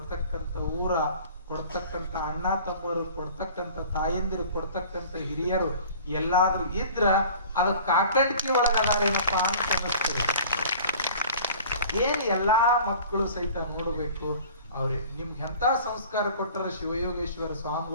ಊರ, ಕೊಡ್ತಕ್ಕಂತ ಅಣ್ಣ ತಮ್ಮರು, ಕೊಡ್ತಕ್ಕಂತ ತಾಯಂದಿರು, ಕೊಡ್ತಕ್ಕಂತ ಹಿರಿಯರು ಎಲ್ಲಾದ್ರೂ ಇದ್ರ ಅದ ಕಾಕಂಡಿಕೆ ಒಳಗದಾರೇನಪ್ಪ ಅಂತ ಅನಿಸ್ತದೆ. ಏನ್ ಎಲ್ಲಾ ಮಕ್ಕಳು ಸಹಿತ ನೋಡ್ಬೇಕು, ಅವ್ರಿಗೆ ನಿಮ್ಗೆ ಎಂತ ಸಂಸ್ಕಾರ ಕೊಟ್ಟರ ಶಿವಯೋಗೇಶ್ವರ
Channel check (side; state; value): both; inverted; correlation -0.45